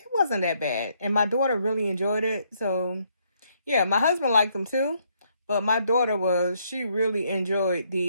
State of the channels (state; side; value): inverted; both; correlation -0.72